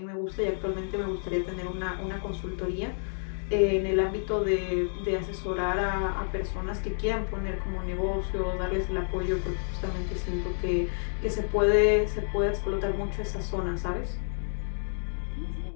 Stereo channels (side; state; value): right; silent; digital silence